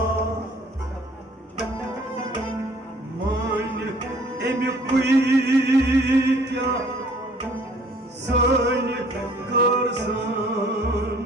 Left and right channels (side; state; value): both; normal; correlation 0.56